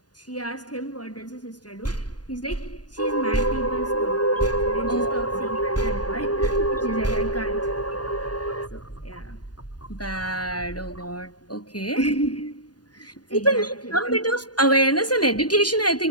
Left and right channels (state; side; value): late; right; 0.69 ms